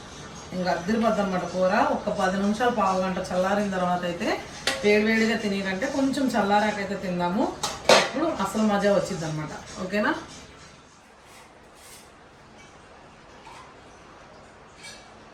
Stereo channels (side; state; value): both; identical; correlation 1.00